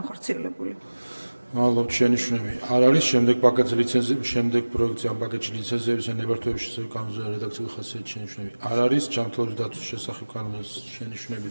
მადლობთ, შენიშვნები არ არის. შემდეგ პაკეტზე ლიცენზიების, შემდეგ პროექტზე ამ პაკეტში ლიცენზიების და ნებართვების შესახებ კანონზე რედაქციული ხასიათის შენიშვნები არ არის. ჯანმრთელობის დაცვის შესახებ კანონზე შენიშვნები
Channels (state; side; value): inverted; both; correlation -1.00